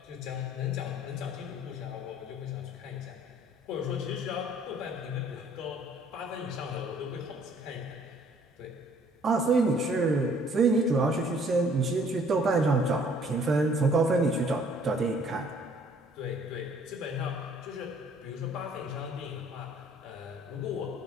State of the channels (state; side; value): normal; both; correlation 0.58